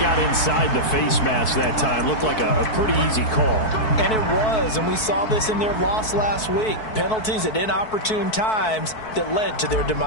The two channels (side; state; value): right; late; 4.6 ms